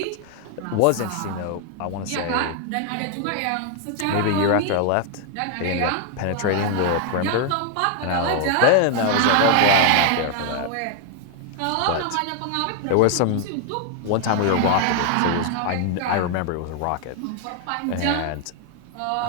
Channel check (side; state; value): both; different; correlation 0.00